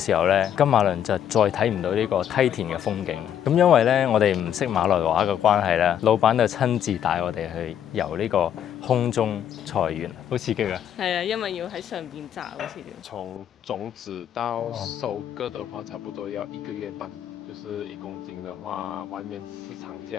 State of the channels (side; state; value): right; quieter; 9.7 dB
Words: 候咧，金馬倫就再睇唔到呢個梯田嘅風景。咁因為咧我哋唔識馬來話嘅關係咧，老闆就親自帶我哋去遊呢個空中菜園，好刺激啊！係啊，因為要喺上邊摘好似。从种子到收割的话，差不多要1个月半。就是1公斤的话，外面市场